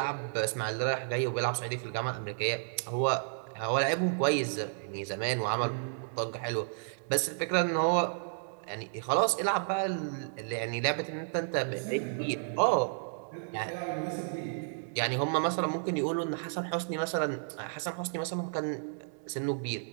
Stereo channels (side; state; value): left; silent; digital silence